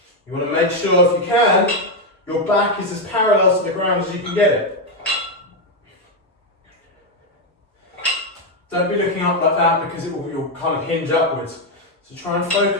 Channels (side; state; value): both; normal; correlation 0.04